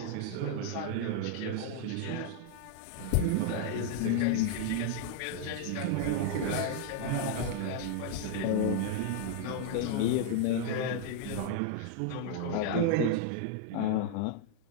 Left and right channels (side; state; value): both; different; correlation -0.01